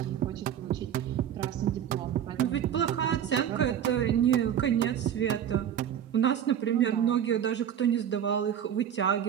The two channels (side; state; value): left; quieter; 9.5 dB